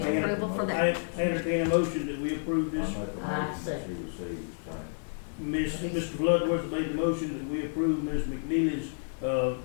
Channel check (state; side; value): silent; right; 56 dB below the other